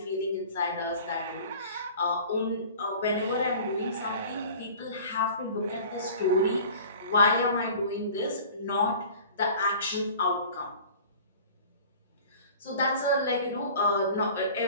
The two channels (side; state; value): both; inverted; correlation -0.43